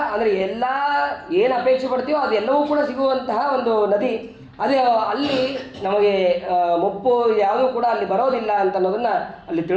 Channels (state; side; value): identical; both; correlation 1.00